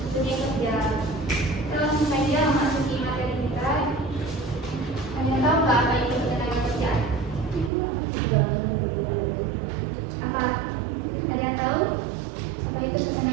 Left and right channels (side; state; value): left; drops out; at 7.7 s